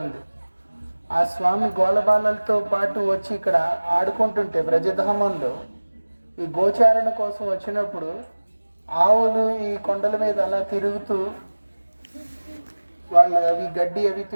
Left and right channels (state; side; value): inverted; both; correlation -1.00